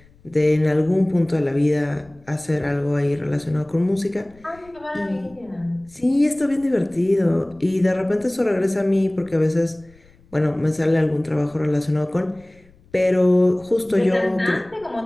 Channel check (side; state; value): left; noise; rumble, 28 dB below the sound